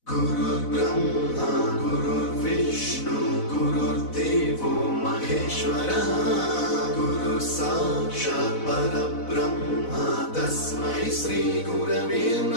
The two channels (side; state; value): right; late; 4.0 ms